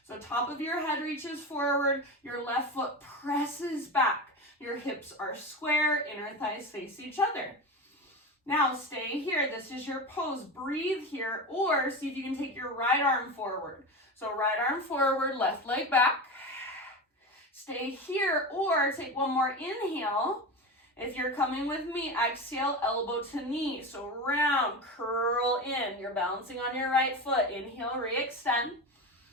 So top of your head reaches forward, your left foot presses back. Your hips are square, inner thighs face each other. Now stay here, this is your pose. Breathe here, or see if you can take your right arm forward. So right arm forward, left leg back. Stay here, or take one more inhale. If you're coming with me, exhale, elbow to knee. So round, curl in. You're balancing on your right foot. Inhale, re-extend.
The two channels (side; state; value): both; normal; correlation 0.24